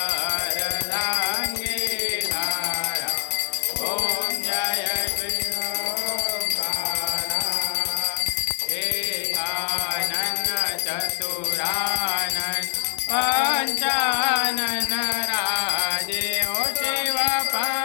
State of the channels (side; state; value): right; silent; 57 dB below the other